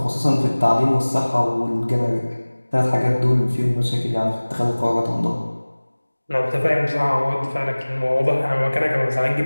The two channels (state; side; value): inverted; both; correlation -1.00